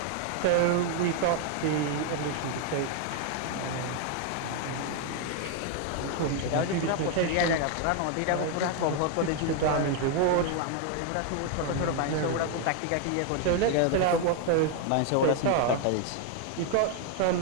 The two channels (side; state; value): both; different; correlation 0.00